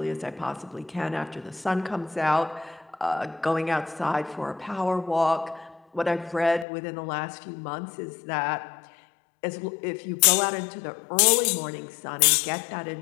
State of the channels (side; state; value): right; drops out; at 6.7 s